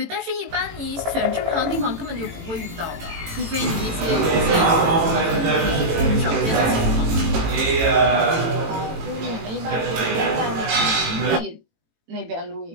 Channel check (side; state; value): left; late; 18 ms